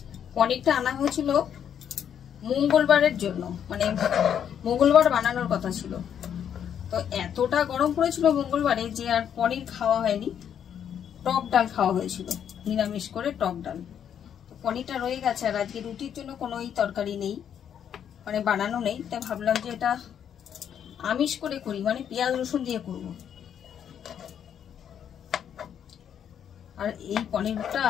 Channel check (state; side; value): quieter; right; 8.8 dB